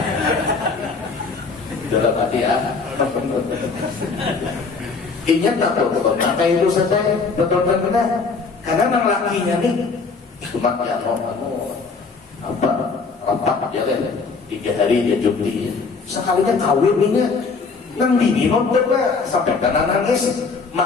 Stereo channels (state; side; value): quieter; right; 4.6 dB